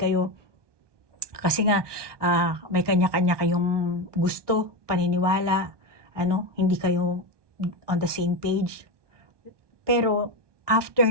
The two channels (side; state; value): left; late; 1.2 ms